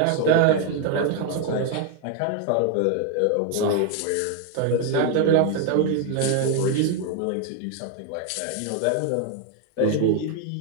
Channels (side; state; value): both; different; correlation 0.01